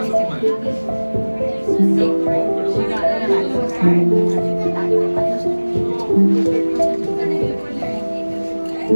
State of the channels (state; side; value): inverted; both; correlation -1.00